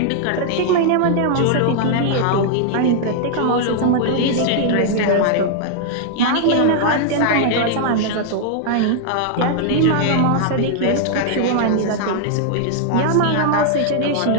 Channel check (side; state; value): both; different; correlation -0.01